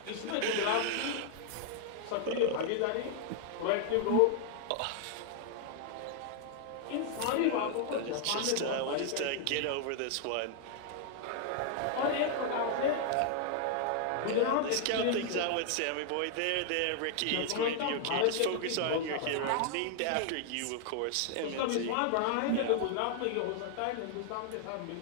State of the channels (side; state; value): both; different; correlation 0.00